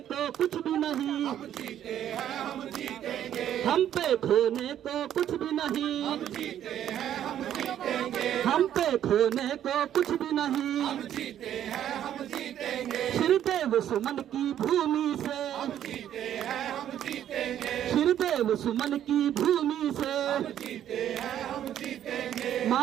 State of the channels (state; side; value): quieter; left; 10.8 dB